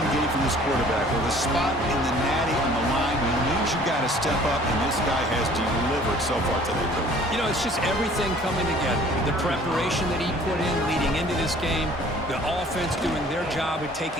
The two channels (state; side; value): normal; both; correlation 0.52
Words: game from this quarterback. With a spot in the natty on the line, he knows you got to step up, and this guy has delivered so far today. You know, it's just everything coming together. The preparation that he put in leading into this game, the offense doing their job of